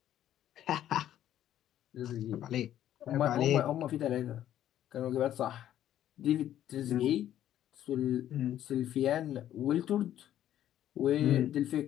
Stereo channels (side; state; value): right; quieter; 11.7 dB